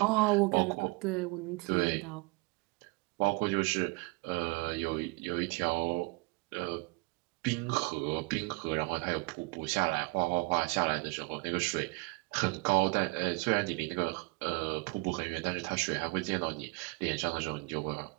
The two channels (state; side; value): quieter; left; 27.7 dB